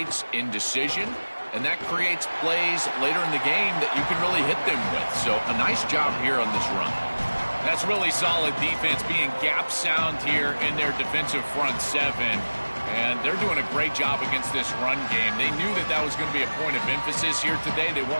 indecision, and that creates plays later in the game that you can really hit them with. So a nice job here on this run. That's really solid defense, being gap sound here in their defensive front seven. And they're doing a great job against this run game. They knew that that was going to be a point of emphasis here today. They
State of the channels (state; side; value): inverted; both; correlation -1.00